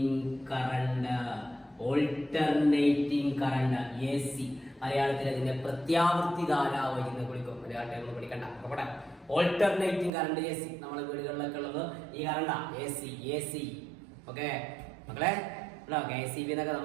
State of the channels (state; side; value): drops out; left; at 10.1 s